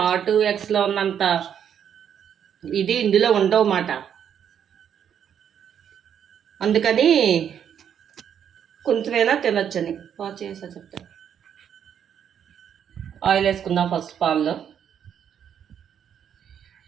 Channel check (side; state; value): left; quieter; 8.7 dB